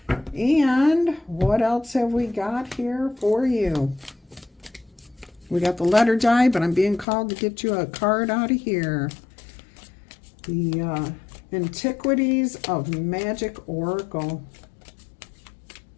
And what else have we got here for you? We got the letter die, but I'm being called to get you a card out of here. The Antiquities of Magic Oracle.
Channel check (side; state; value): right; drops out; at 7.1 s